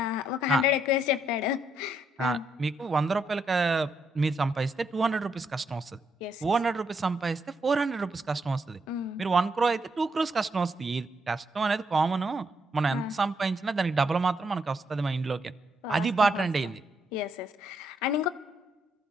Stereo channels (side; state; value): both; normal; correlation 0.77